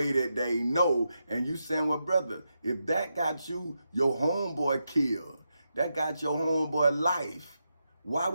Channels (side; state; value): both; inverted; correlation -0.86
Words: that they know. And you saying, well, brother, if that got your homeboy killed, that got your homeboy life, why